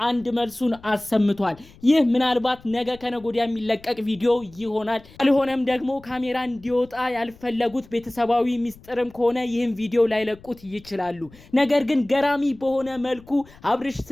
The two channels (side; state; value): left; noise; rumble, 24 dB below the sound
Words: አንድ መልሱን አሰምቷል። ይህ ምናልባት ነገ ከነጎዲያ የሚለቀቅ ቪዲዮ ይሆናል። አልሆነም ደግሞ ካሜራ እንዲወጣ ያልፈለጉት ቤተሰባዊ ሚስጥርም ከሆነ ይህን ቪዲዮ ላይለቁት ይችላሉ። ነገር ግን ገራሚ በሆነ መልኩ አብርሽ